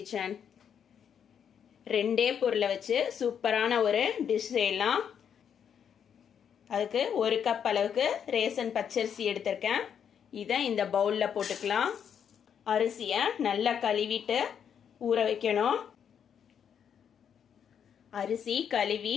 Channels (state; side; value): quieter; right; 8.1 dB